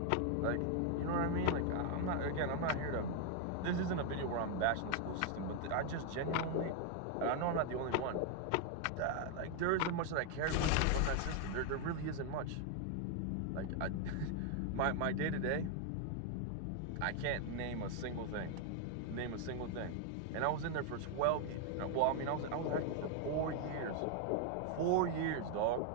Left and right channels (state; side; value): different; both; correlation 0.00